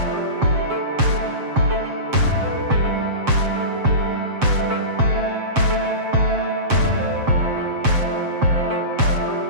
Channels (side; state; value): left; late; 7.6 ms